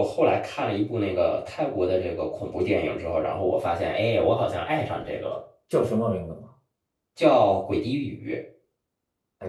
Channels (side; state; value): both; identical; correlation 1.00